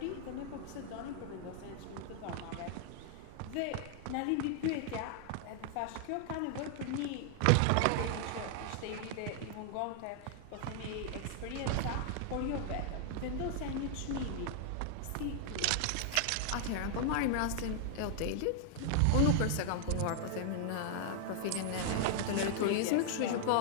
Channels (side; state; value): both; different; correlation 0.00